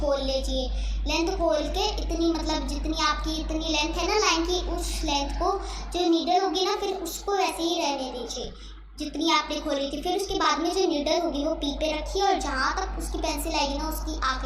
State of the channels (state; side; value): identical; both; correlation 1.00